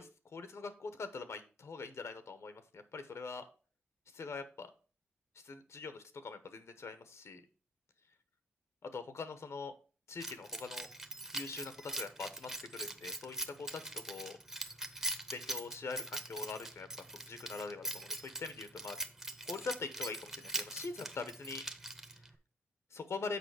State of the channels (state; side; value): normal; both; correlation 0.39